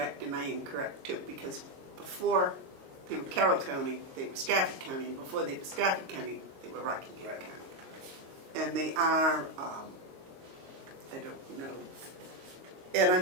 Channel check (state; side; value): late; left; 22 ms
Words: and I am correct too, because before they were Carroll County, they were Stafford County, and before they were Stafford County, they were Rockingham County. And they are, I don't know. And